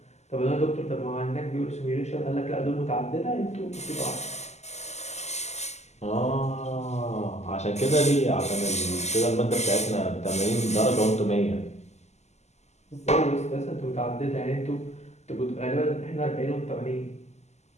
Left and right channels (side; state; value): right; late; 0.33 ms